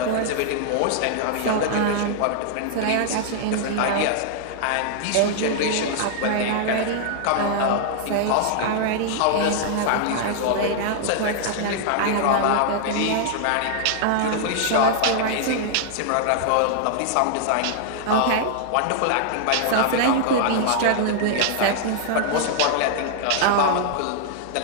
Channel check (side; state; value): both; different; correlation -0.01